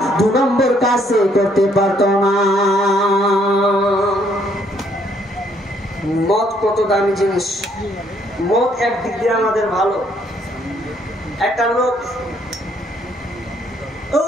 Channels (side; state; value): both; normal; correlation 0.67